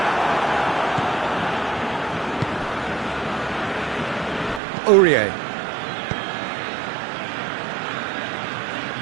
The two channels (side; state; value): left; drops out; at 4.6 s